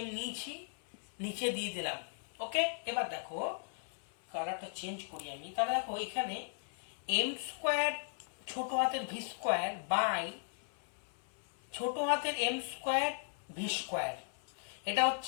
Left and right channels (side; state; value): right; silent; 53 dB below the other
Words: নিয়েছি, নিচে দিয়ে দিলাম। ওকে, এবার দেখো কালারটা চেঞ্জ করি আমি। তাহলে দেখো এখানে এম স্কোয়ার ছোট হাতের ভি স্কোয়ার বাই ছোট হাতের এম স্কোয়ার ভি স্কোয়ার, এটা